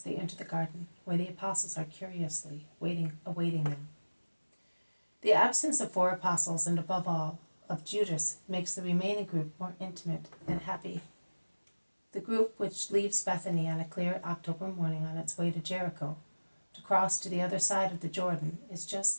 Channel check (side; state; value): both; inverted; correlation -1.00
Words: they enter the garden, where the apostles are curiously awaiting them. The absence of 4 apostles, and above all, of Judas, makes the remaining group more intimate and happy. The group which leaves Bethany on a clear October morning on its way to Jericho, to cross to the other side of the Jordan, is just